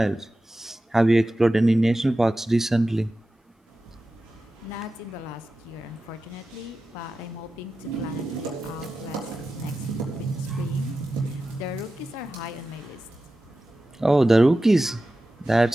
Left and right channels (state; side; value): normal; both; correlation 0.93